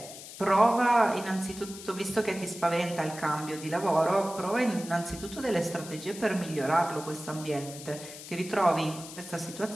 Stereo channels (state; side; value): noise; left; hiss, 13 dB below the sound